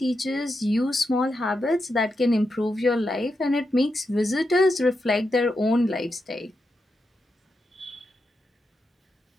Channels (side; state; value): both; normal; correlation 0.86